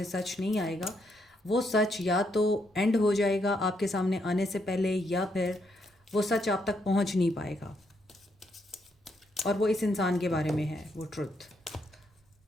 सच नहीं आएगा। वो सच या तो एंड हो जाएगा आपके सामने आने से पहले, या फिर वो सच आप तक पहुँच नहीं पाएगा। और वो इस इंसान के बारे में है, वो ट्रुथ।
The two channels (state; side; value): normal; both; correlation 0.76